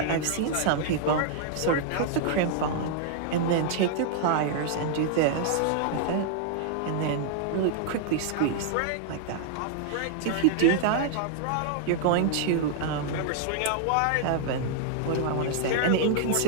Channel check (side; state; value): both; different; correlation -0.01